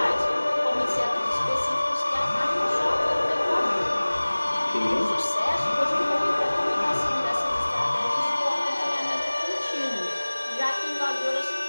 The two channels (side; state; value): both; inverted; correlation -1.00